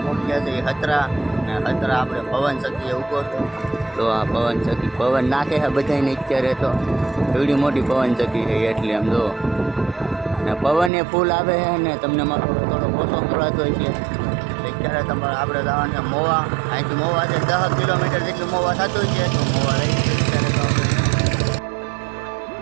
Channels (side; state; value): left; drops out; at 10.9 s